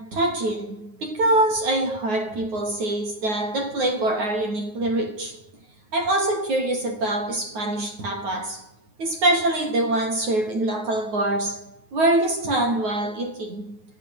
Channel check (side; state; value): left; late; 9.4 ms